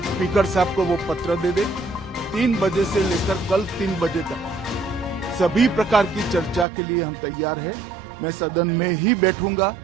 स्पीकर साहब को वो पत्र दे दे। 3 बजे से लेकर कल 3 बजे तक सभी प्रकार की चर्चा के लिए हम तैयार हैं। मैं सदन में ही बैठूंगा,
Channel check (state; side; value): drops out; left; at 6.7 s